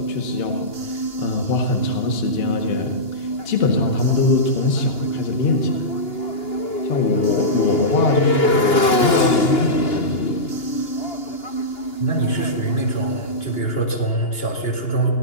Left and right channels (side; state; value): right; late; 2.9 ms